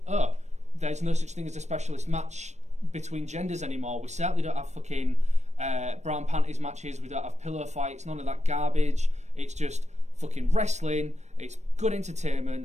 there's no such thing as a specialist match between genders anymore. We certainly don't have fucking brown panties matches. We don't have pillow fights. None of that garbage. It's just fucking wrestling. It's good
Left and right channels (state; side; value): late; left; 0.33 ms